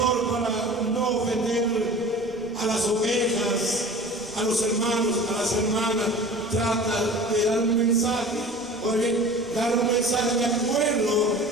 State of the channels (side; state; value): left; noise; rumble, 25 dB below the sound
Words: para no ofender a las ovejas, a los hermanos, a las hermanas, trata de dar un mensaje, o bien dar un mensaje de acuerdo